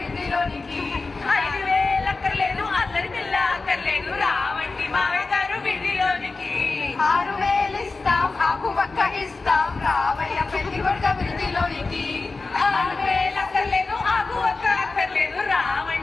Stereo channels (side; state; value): right; quieter; 3.8 dB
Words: 5000 అక్కర్లేదు అల్లరి పిల్ల అక్కర్లేదు రావండి మామగారు విడిదిలోనికి 6000 ఇస్తాం ఆకు పక్క ఇస్తాం రావయ్య పెళ్లి కొడుకు అభివృద్ధిలోనికి 6000 అక్కర్లేదు ఆకు ఒక్క అక్కర్లేదు